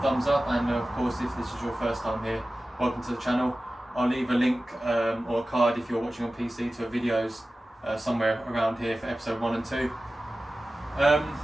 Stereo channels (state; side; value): normal; both; correlation 0.95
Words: thumbs up, and of course if this is your first time here, welcome to the channel. I'll leave a link or a card if you're watching on PC to videos somewhere around here for episode 1 and 2.